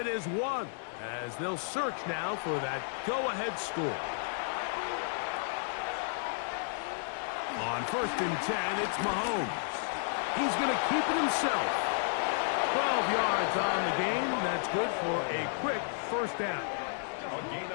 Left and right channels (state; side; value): silent; right; 56 dB below the other